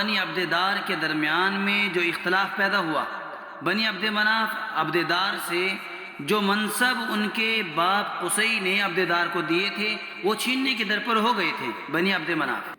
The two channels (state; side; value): identical; both; correlation 1.00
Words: عبد دار کے درمیان میں جو اختلاف پیدا ہوا، بنی عبد مناف عبد دار سے جو منصب ان کے باپ قصی نے عبد دار کو دیے تھے وہ چھیننے کے در پر ہو گئے تھے بنی عبد مناف۔